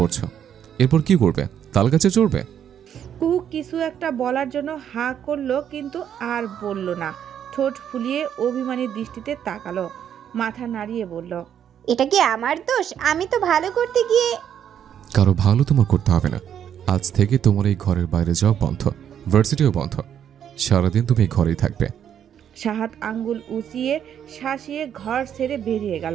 এরপর কি করবে? তাল গাছে চড়বে? কুহু কিছু একটা বলার জন্য হা করলো, কিন্তু আর বলল না। ঠোঁট ফুলিয়ে অভিমানী দৃষ্টিতে তাকালো, মাথা নাড়িয়ে বলল, এটা কি আমার দোষ? আমি তো ভালো করতে গিয়ে। কারো ভালো তোমার করতে হবে না। আজ থেকে তোমার এই ঘরের বাইরে যাওয়া বন্ধ, ভার্সিটিও বন্ধ। সারাদিন তুমি এই ঘরেই থাকবে। শাহাদ আঙ্গুল উঁচিয়ে শাসিয়ে ঘর ছেড়ে বেরিয়ে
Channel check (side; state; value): left; quieter; 9.2 dB